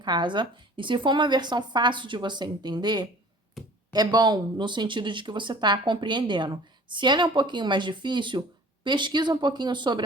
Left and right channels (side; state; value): both; normal; correlation 0.47